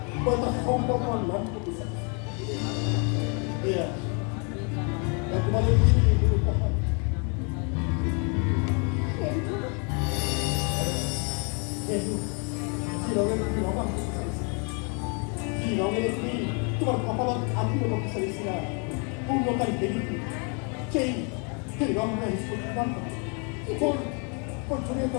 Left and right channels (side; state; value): right; quieter; 36.5 dB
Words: তোমার কপালত আত্মীয় করতে চাইছিলা পূর্ণকারী দেবীকে সেই রঙটা ছড়িয়ে তো